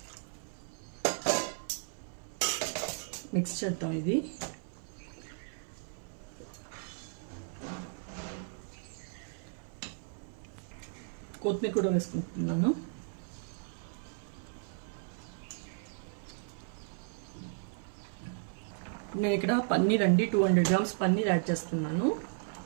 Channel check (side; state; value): left; silent; 54 dB below the other